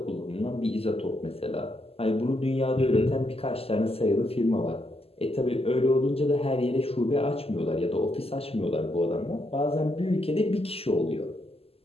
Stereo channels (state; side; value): late; right; 0.29 ms